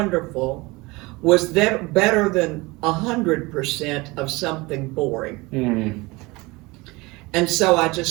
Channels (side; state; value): left; quieter; 23.3 dB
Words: was better than 100% of something boring. Mm-hmm. And so I